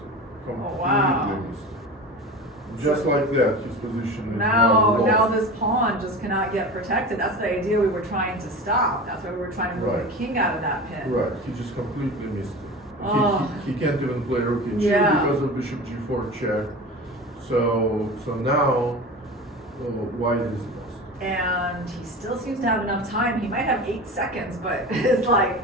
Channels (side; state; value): both; normal; correlation 0.32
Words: Oh wow. Missed it. Just like that, his position is now this pawn just cannot get protected. That's the idea we were trying to stop. That's why we were trying to move the king out of that pin. Right, he just completely missed it. Oh. He can't even play rook e2 because of bishop g4 check. So now white is lost. And he still seems to have enough time. He might have 8 seconds, but